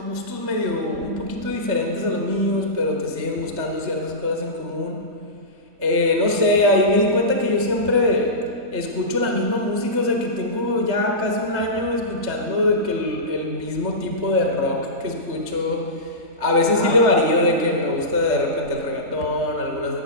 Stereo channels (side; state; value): left; late; 3.3 ms